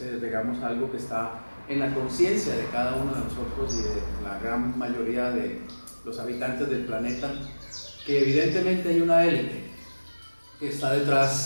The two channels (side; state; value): both; inverted; correlation -1.00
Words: digamos, algo que está en la conciencia de cada uno de nosotros y de la gran mayoría de los habitantes del planeta, que evidentemente hay una élite que está